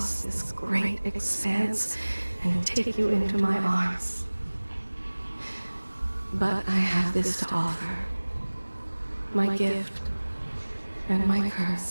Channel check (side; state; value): both; inverted; correlation -1.00